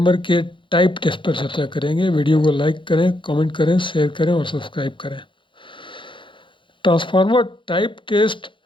के टाइप टेस्ट पर चर्चा करेंगे। वीडियो को लाइक करें, कमेंट करें, शेयर करें और सब्सक्राइब करें। ट्रांसफार्मर टाइप टेस्ट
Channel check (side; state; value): right; late; 0.24 ms